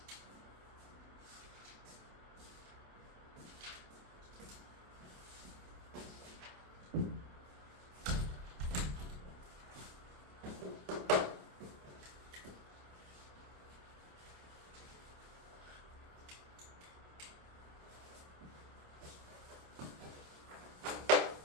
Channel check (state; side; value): late; left; 27 ms